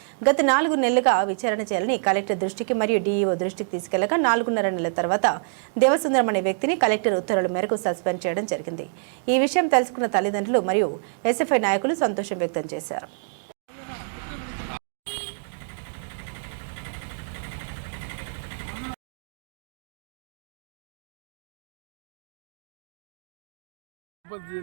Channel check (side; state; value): left; silent; digital silence